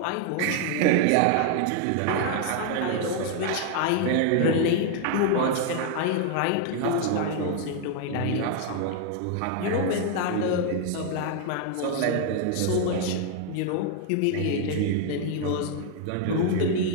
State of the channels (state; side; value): different; both; correlation 0.00